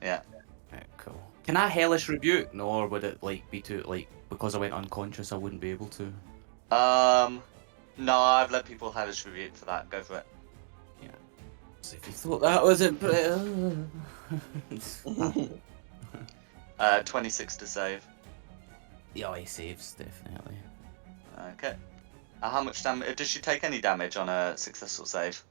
Yeah. Right, cool. Can I hellish rebuke? No, or would it like be too like because I went unconscious I wouldn't be able to? No, I've let people hellish rebuke for that. Go for it. Yeah. So if you thought that wasn't 26 to save. yeah, he saves definitely. Okay. How much damage? Does she take any damage on a successful save?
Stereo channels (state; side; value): silent; left; digital silence